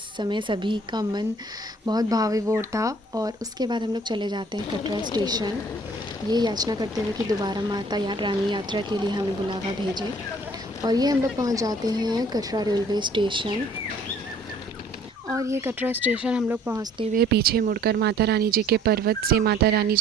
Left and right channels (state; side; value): normal; both; correlation 0.57